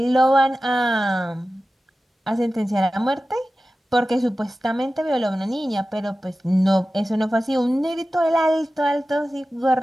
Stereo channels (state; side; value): normal; both; correlation 0.95